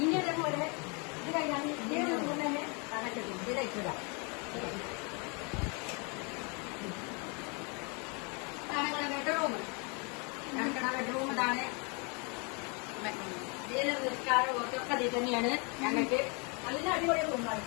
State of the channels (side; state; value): right; quieter; 33.5 dB